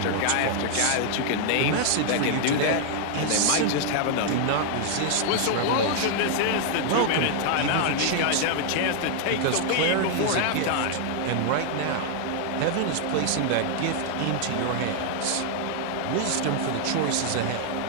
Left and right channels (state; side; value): different; both; correlation 0.00